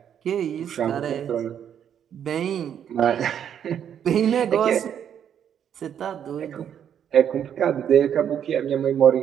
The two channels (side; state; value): left; quieter; 9.1 dB